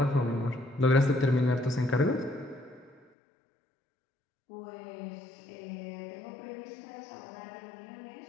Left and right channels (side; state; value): right; drops out; at 3.1 s